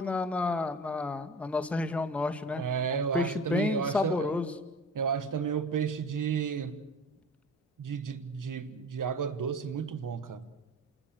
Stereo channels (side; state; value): both; normal; correlation 0.38